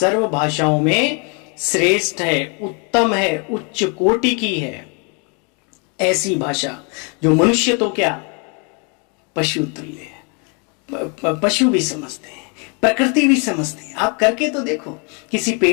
भाषाओं में श्रेष्ठ है, उत्तम है, उच्च कोटि की है। ऐसी भाषा जो मनुष्य तो क्या, पशु तुल्य है। पशु भी समझते हैं, प्रकृति भी समझती है। आप करके तो देखो, किसी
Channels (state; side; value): quieter; right; 34.8 dB